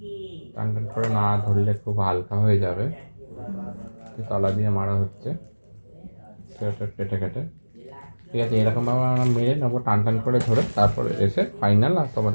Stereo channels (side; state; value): both; inverted; correlation -1.00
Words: টান টান করে না ধরলে খুব হালকা হয়ে যাবে, তলা দিয়ে মারা হচ্ছে সেলোটেপ কেটে কেটে। ঠিক আছে, এরকমভাবে আমরা মেরে নেবো টান টান করে ধরে, তারপরে এসে ফাইনাল আর